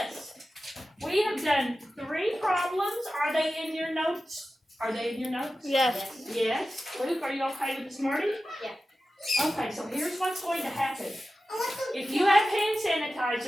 We have done 3 problems. Are they in your notes? Are they in your notes? Yes. Yes. Luke, are you okay with this morning? Yeah. Okay, so here's what's going to happen. If you have hand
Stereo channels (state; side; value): normal; both; correlation 0.94